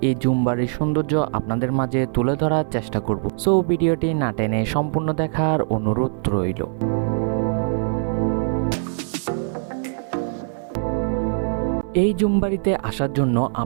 এই জুমবাড়ির সৌন্দর্য আপনাদের মাঝে তুলে ধরার চেষ্টা করব। সো ভিডিওটি না টেনে সম্পূর্ণ দেখার অনুরোধ রইল। এই জুমবাড়িতে আসার জন্য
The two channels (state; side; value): silent; left; 58 dB below the other